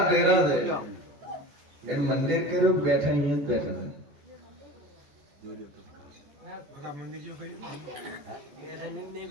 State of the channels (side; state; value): left; late; 14 ms